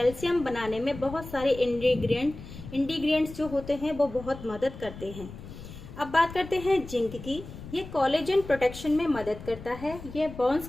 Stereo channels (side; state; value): left; noise; rumble, 13 dB below the sound